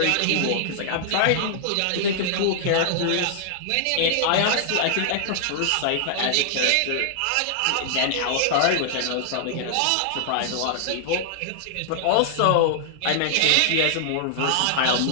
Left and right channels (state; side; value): different; both; correlation -0.01